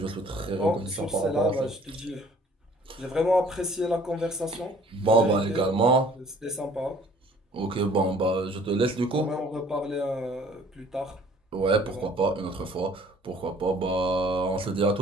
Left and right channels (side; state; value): both; normal; correlation 0.55